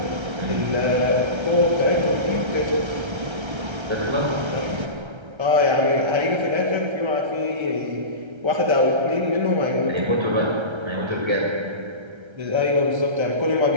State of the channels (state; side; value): late; left; 1.3 ms